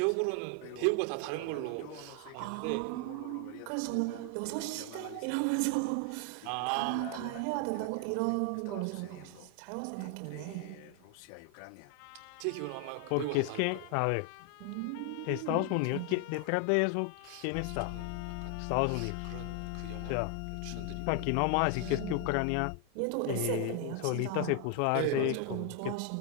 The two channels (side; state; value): both; different; correlation 0.00